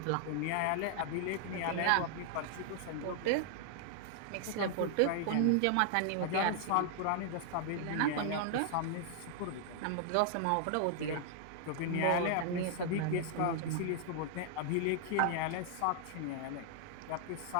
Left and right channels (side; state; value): both; different; correlation 0.00